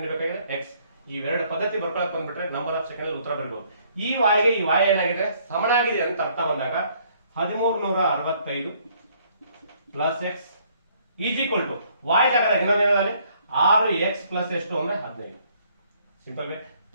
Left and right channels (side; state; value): both; inverted; correlation -0.64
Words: x. ಇವೆರಡು ಪದ್ಧತಿ ಬರ್ಕೊಳಕ್ ಬಂದ್ಬಿಟ್ರೆ ನಂಬರ್ ಆಫ್ ಸೆಕೆಂಡ್ ಉತ್ತರ ಬರಬಹುದು. ಈ y ಗೆ ಈ y ಏನಾಗಿದೆ ಸಮನಾಗಿದೆ ಅಂತ ಅರ್ಥ ಬಂದಾಗ 1365 plus x is equal to y ಜಾಗದಾಗ ಇನ್ನೊಂದೇನಾದ್ರೆ 6x ಪ್ಲಸ್ ಎಷ್ಟು ಅಂದ್ರೆ 15. Simple way.